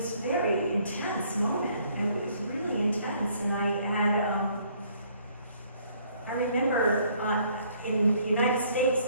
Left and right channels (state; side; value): inverted; both; correlation -0.63